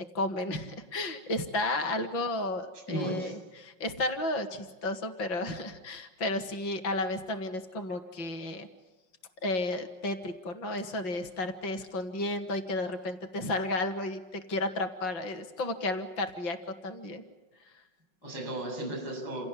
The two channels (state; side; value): late; right; 5.5 ms